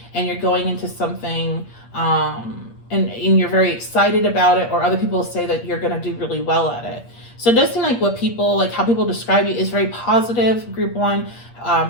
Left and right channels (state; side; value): late; right; 8.6 ms